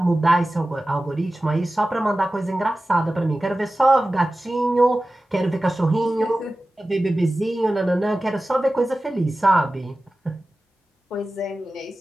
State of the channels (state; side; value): normal; both; correlation 0.95